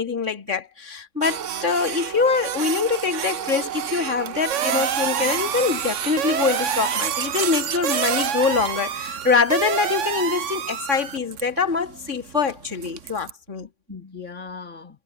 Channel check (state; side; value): late; left; 3.6 ms